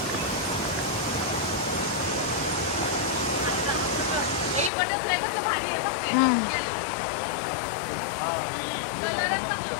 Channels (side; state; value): right; drops out; at 4.7 s